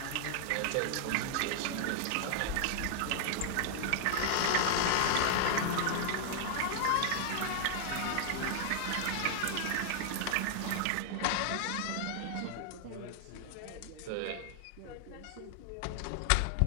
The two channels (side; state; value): both; different; correlation 0.00